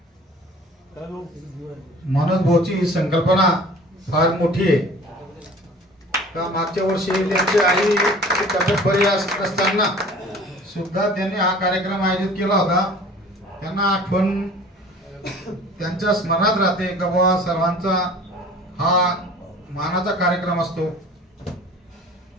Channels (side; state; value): both; normal; correlation 0.46